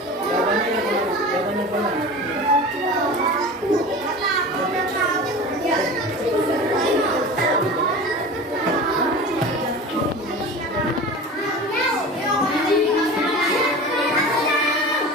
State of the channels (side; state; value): both; normal; correlation 0.34